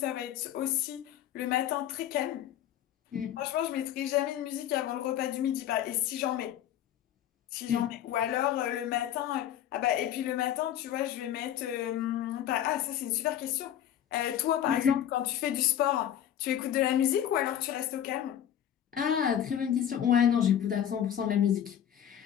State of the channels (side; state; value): right; quieter; 10.5 dB